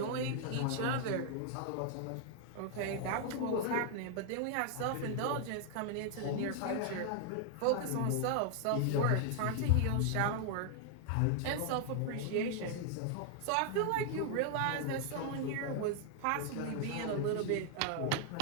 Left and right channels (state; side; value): different; both; correlation 0.00